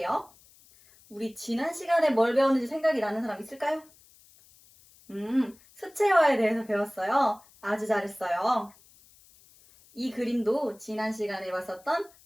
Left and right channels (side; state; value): left; noise; hiss, 27 dB below the sound